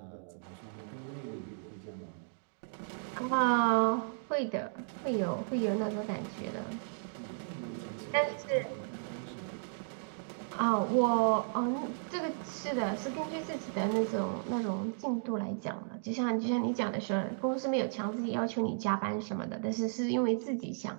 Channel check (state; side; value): silent; left; digital silence